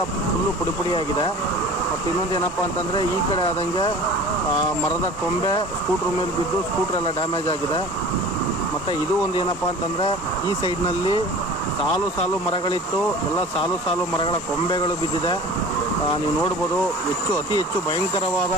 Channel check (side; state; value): both; normal; correlation 0.41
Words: ಫುಲ್ಲು ಪುಡಿ ಆಗಿದೆ. ಮತ್ತು ಇನ್ನೊಂದು ಏನಪ್ಪ ಅಂತಂದರೆ, ಈ ಕಡೆ ಆದಂಗೆ ಮರದ ಕೊಂಬೆ ಸ್ಕೂಟ್ರ್ ಮೇಲೆ ಬಿದ್ದು ಸ್ಕೂಟ್ರೆಲ್ಲ ಡ್ಯಾಮೇಜ್ ಆಗಿದೆ. ಮತ್ತು ಇದು ಒಂದು ಏನಪ್ಪ ಅಂತಂದರೆ, ಈ ಸೈಡ್ನಲ್ಲಿ ಸಾಲು ಮರಗಳಿತ್ತು, ಎಲ್ಲ ಸಾಲು ಮರಗಳ ಕೊಂಬೆಗಳು ಬಿದ್ದಿದೆ. ನೀವು ನೋಡ್ಬೋದು, ಅತಿ ಹೆಚ್ಚು ಭಯಂಕರವಾದ